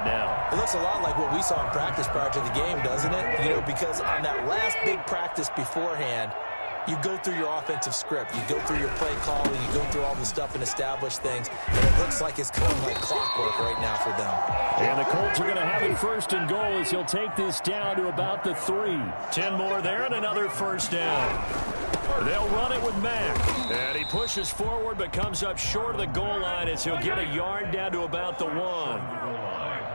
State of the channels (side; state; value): both; inverted; correlation -1.00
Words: now. It looks a lot like what we saw in practice prior to the game, doesn't it? You know, because on that last big practice beforehand, you go through your offensive script. You go through your play calling. You go through all the stuff and establish things. And it looks like it's going like clockwork right now for them. And the Colts are going to have it 1st and goal as he'll take this down to about the 3. 10 more there and another first down. They'll run it with Mack. And he pushes forward but comes up short of the goal line as he'll get a yard down to about the 1.